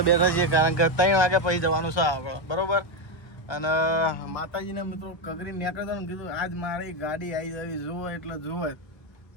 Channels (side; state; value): right; late; 1.2 ms